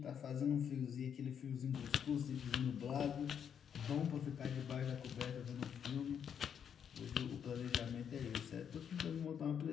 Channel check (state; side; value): quieter; right; 8.0 dB